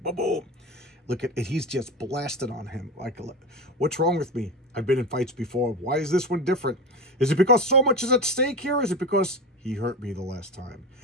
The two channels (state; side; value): normal; both; correlation 0.23